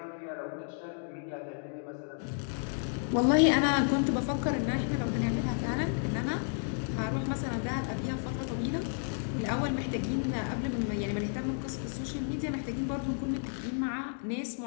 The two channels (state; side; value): silent; right; 56 dB below the other